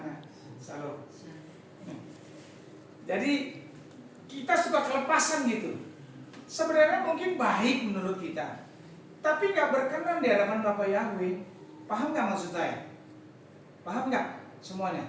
Salam. Jadi kita suka kelepasan gitu. Sebenarnya mungkin baik menurut kita, tapi nggak berkenan di hadapan Bapak Yahweh. Paham nggak maksud saya? Paham nggak semuanya?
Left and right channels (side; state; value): both; identical; correlation 1.00